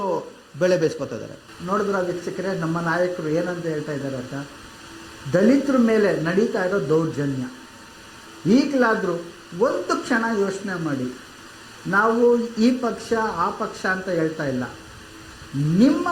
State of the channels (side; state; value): both; identical; correlation 1.00